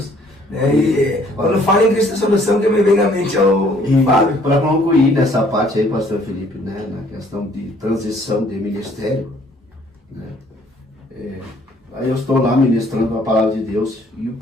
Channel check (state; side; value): normal; both; correlation 0.61